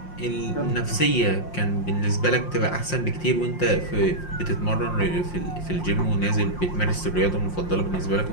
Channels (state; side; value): late; right; 5.6 ms